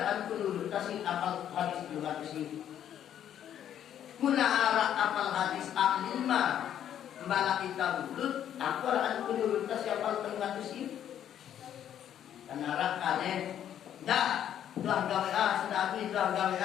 pelurut kasih apal hadis 300 iu. Muna arah apal hadis A5 mbala kita mulut. Aku akan pelurut kasih apal 300 iu. Karena kalian dah telah gawe telah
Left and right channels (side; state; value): right; quieter; 10.2 dB